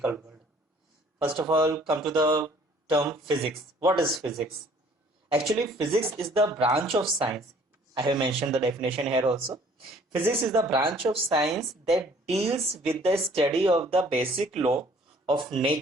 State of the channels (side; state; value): both; normal; correlation 0.56